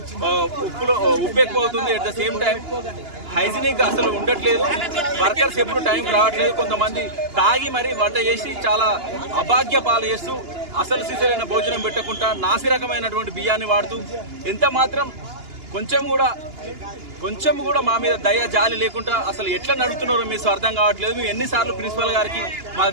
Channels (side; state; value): left; late; 2.9 ms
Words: ఉప్పు ఎక్కువ అవుతుంది. At the same time hygienic అసలు ఉండట్లేదు. వర్కర్స్ ఎప్పుడు టైం రావట్లేదు. కొంతమంది తాగి మరీ వంట చేసి చాలా అభాగ్య పాలు చేస్తూ అసలు సిసలైన భోజనం పెట్టకుండా నాసి రకమైనటువంటి బియ్యాన్ని వాడుతూ ఎంత మాత్రం కొంచెం కూడా మా మీద దయ జాలి లేకుండా అసలు ఎట్లా నడుపుతున్నారో మీకు అర్థం కావట్లేదు. మేము ఎన్నిసార్లు ప్రిన్సిపల్ గారికి, మా